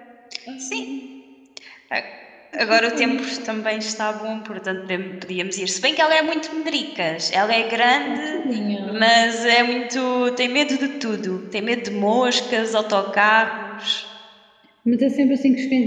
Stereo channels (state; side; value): identical; both; correlation 1.00